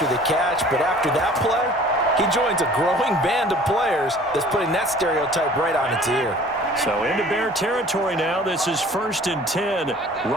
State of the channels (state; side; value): normal; both; correlation 0.49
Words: the catch, but after that play, he joins a growing band of players that's putting that stereotype right on its ear. So into Bear territory now. This is 1st and 10